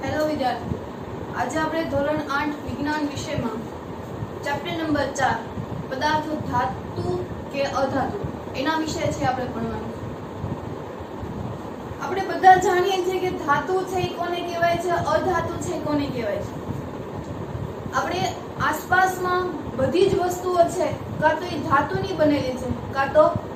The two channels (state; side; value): identical; both; correlation 1.00